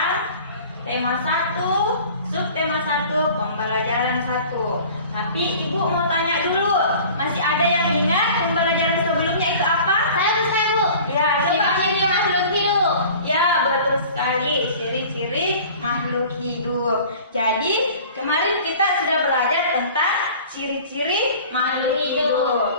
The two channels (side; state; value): both; inverted; correlation -0.44